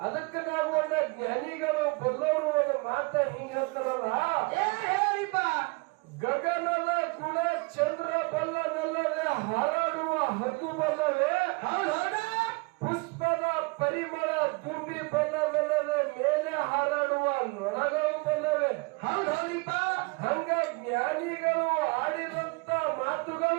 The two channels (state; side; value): quieter; left; 28.7 dB